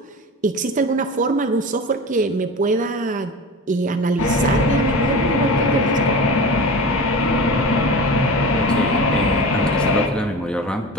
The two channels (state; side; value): normal; both; correlation 0.31